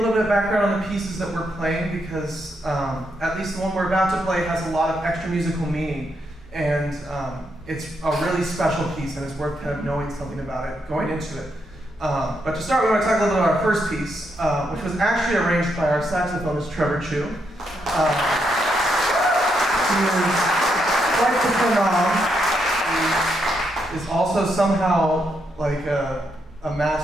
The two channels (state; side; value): normal; both; correlation 0.79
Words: bit of background on the pieces that we're playing because at least the one we're about to play has a lot of extra musical meaning, and it's a really special piece, and it's worth kind of knowing something about it going into it. But to start, we want to talk a little bit about our first piece, which was actually arranged by our saxophonist, Trevor Chu. He is quite the phenom. He is also somehow like a